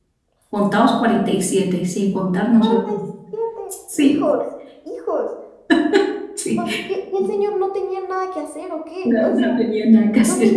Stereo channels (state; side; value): identical; both; correlation 1.00